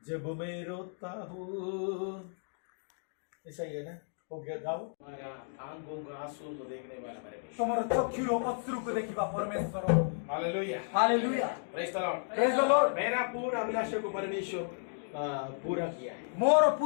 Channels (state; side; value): silent; right; digital silence